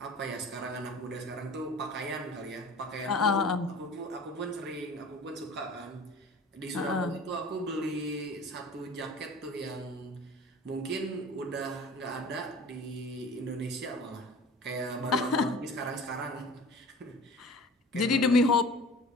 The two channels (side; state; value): both; normal; correlation 0.42